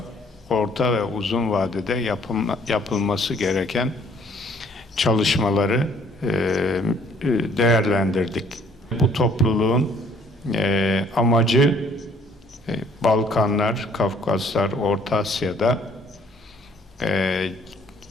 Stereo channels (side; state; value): both; normal; correlation 0.61